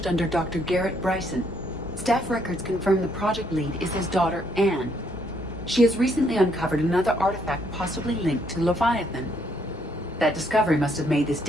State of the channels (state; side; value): normal; both; correlation 0.71